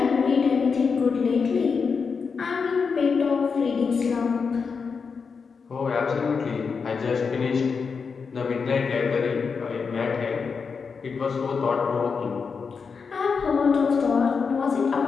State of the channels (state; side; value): quieter; right; 5.4 dB